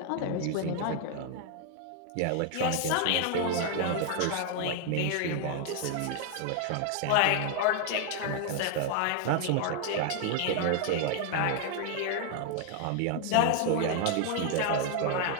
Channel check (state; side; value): different; both; correlation 0.00